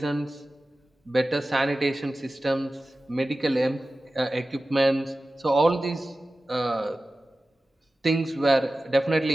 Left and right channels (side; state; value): both; normal; correlation 0.95